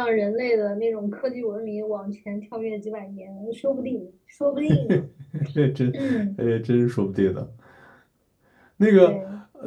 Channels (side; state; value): both; identical; correlation 1.00